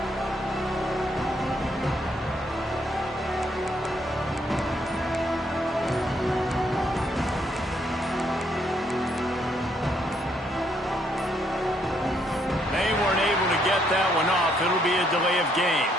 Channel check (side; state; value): both; normal; correlation 0.72